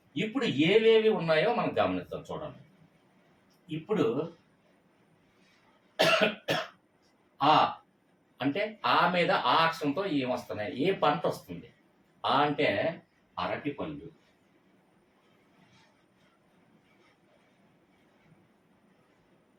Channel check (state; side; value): identical; both; correlation 1.00